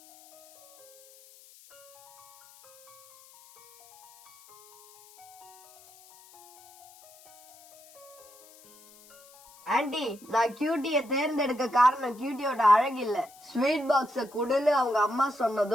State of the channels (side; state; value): left; noise; hiss, 24 dB below the sound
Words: ஆண்டி, நான் கியூட்டிய தேர்ந்தெடுக்க காரணம் கியூட்டியோட அழகு இல்ல, ஸ்வீட் பாக்ஸ குடுன்னு அவங்க அம்மா